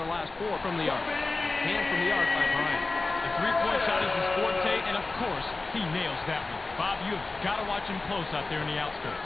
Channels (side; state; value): right; quieter; 3.5 dB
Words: last 4 from the arc. Hand from the arc by Bryant. The three-point shot is his forte, and of course, he nails that one. Bob, you've got to watch him close out there in the